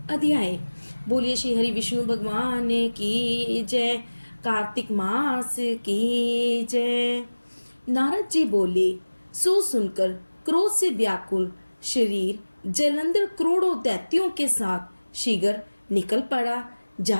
अध्याय। बोलिए श्री हरि विष्णु भगवान की जय। कार्तिक मास की जय। नारद जी बोले, सो सुनकर क्रोध से व्याकुल शरीर जलंधर करोड़ों दैत्यों के साथ शीघ्र निकल पड़ा।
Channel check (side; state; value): both; inverted; correlation -1.00